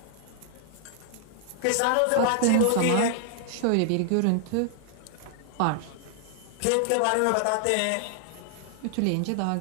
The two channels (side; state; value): both; different; correlation 0.00